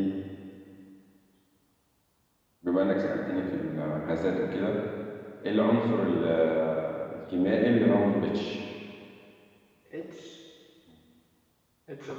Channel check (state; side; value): identical; both; correlation 1.00